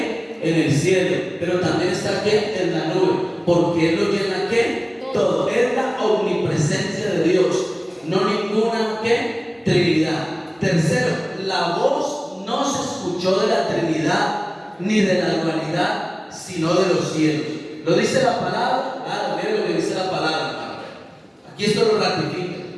en el cielo, pero también está aquí en la nube, porque Él lo llena ¿qué? Todo. Es la omnipresencia de Dios, no ninguna ¿qué? Trinidad. Tercero, la voz no se escuchó de la Trinidad ni de la dualidad, sino de los cielos. ¿Lo dice la palabra? Ah, miren lo que dice la palabra, hermano. Aquí esto lo ratifica,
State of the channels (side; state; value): both; identical; correlation 1.00